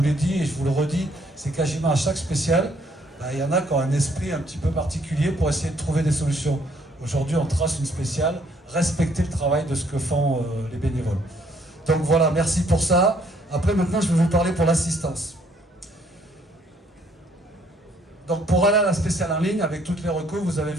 l'ai dit et je vous le redis, c'est quasiment à chaque spéciale, il y en a qui ont un esprit un petit peu particulier pour essayer de trouver des solutions. Aujourd'hui, on trace une spéciale, respecter le travail de ce que font les bénévoles. Donc voilà, merci pour ça. Après, maintenant, je vais vous parler pour l'assistance. Donc pour aller à la spéciale en ligne, avec toutes les recours, vous avez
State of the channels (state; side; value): normal; both; correlation 0.66